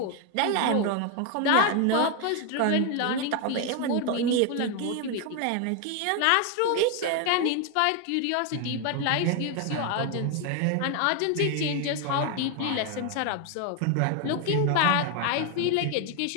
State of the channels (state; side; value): different; both; correlation 0.01